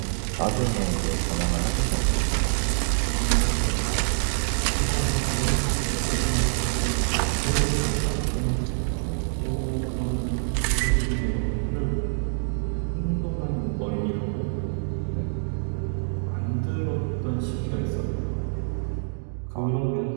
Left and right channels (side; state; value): left; silent; digital silence